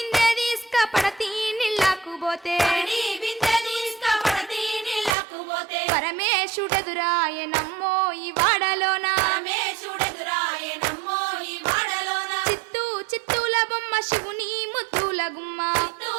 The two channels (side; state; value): left; drops out; at 5.2 s